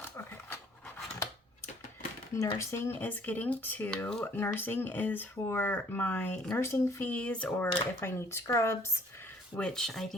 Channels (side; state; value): both; normal; correlation 0.58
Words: Okay. Nursing is getting 2. Nursing is for my nursing fees or if I need scrubs, which I